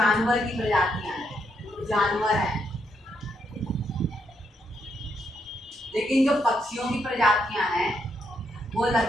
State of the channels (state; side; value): normal; both; correlation 0.78